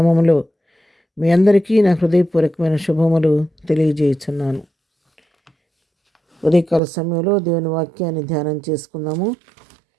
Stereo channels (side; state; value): left; drops out; at 6.8 s